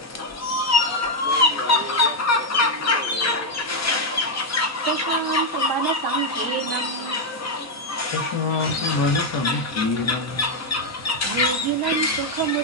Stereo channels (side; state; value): both; normal; correlation 0.02